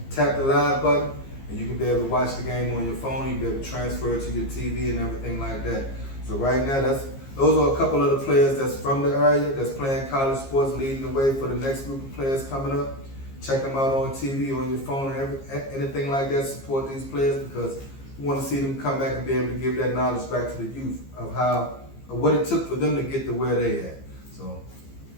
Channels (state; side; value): late; right; 15 ms